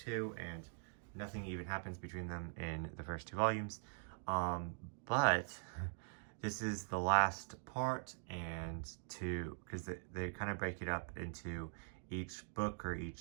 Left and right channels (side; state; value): left; silent; digital silence